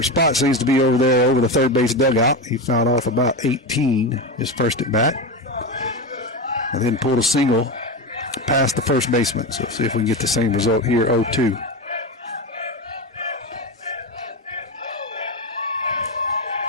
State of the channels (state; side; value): normal; both; correlation 0.18